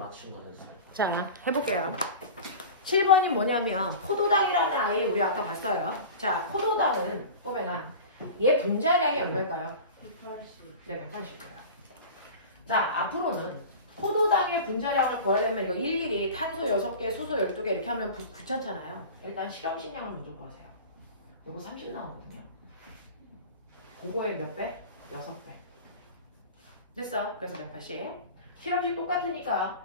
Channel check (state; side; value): inverted; both; correlation -0.34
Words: 거였어요. 자, 해볼게요. 7번이 뭐냐면 포도당이라는 아이 우리 아까 봤어요. 자, 포도당은 보면 얘 분자량이 얼마일까요? 180. 네, 180이에요. 자, 앞으로는 포도당의 분자량을 구하려면 이거 일일이 탄소 6개, 수소 12개 이렇게 하면 귀찮잖아요. 일단 실험식량을 먼저 구하세요. 요거 30 나오거든요. 그거의 몇 배? 6배. 됐어. 그래서 180. 실험식